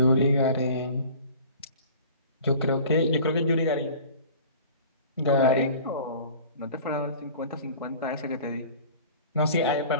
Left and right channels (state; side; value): inverted; both; correlation -0.43